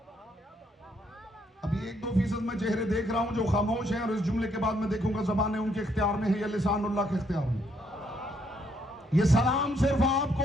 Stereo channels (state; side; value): normal; both; correlation 0.72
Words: अभी 1-2% मैं चेहरे देख रहा हूं जो खामोश हैं और इस जुमले के बाद मैं देखूंगा जबानें उनके इख्तियार में है या लिसानुल्लाह के इख्तियार में। ये सलाम सिर्फ आपको